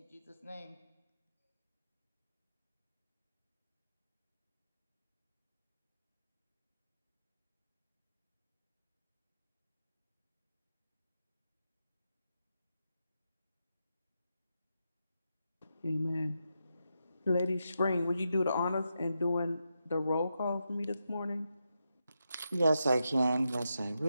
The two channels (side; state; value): both; inverted; correlation -0.86